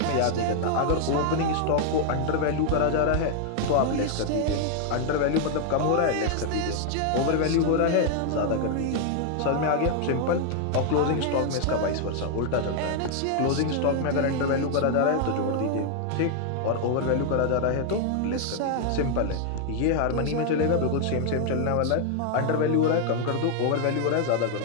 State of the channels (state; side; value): different; both; correlation 0.00